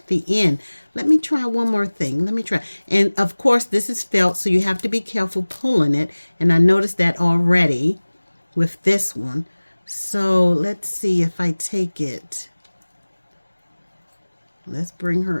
the end. Let me try one more thing. Let me try. And of course, this is felt, so you have to be careful pulling it. And I noticed that already with this one. So let's see if I take it. Let's bring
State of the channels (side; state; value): both; inverted; correlation -1.00